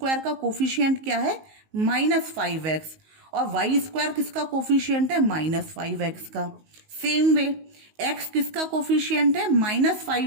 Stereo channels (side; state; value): left; late; 19 ms